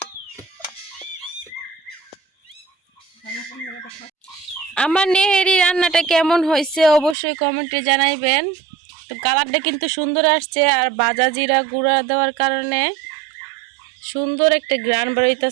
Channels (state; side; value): drops out; left; at 7.2 s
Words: আমার নেহেরি রান্নাটা কেমন হয়েছে অবশ্যই কমেন্টে জানাইবেন। তো কালারটা কিন্তু সুন্দর আসছে, আর ভাজা জিরা গুঁড়া দেওয়ার কারণে সুন্দর একটা গ্রান